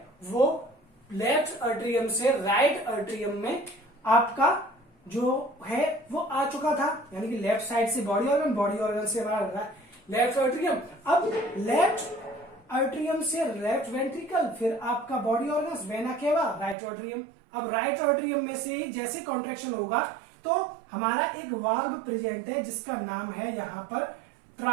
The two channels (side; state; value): left; drops out; at 16.8 s